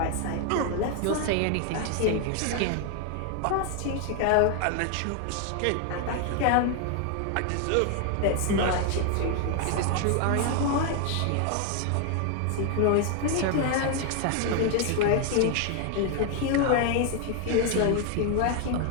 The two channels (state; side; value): different; both; correlation 0.00